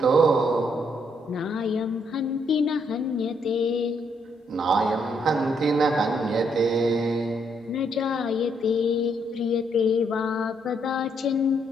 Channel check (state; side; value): normal; both; correlation 0.73